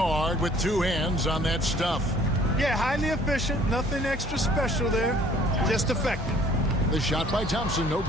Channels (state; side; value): normal; both; correlation 0.56